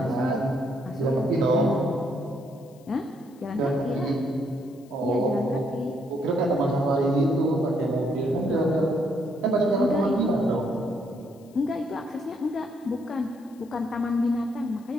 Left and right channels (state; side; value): noise; left; hiss, 30 dB below the sound